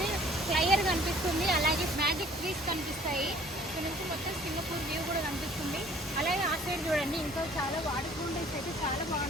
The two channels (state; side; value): normal; both; correlation 0.54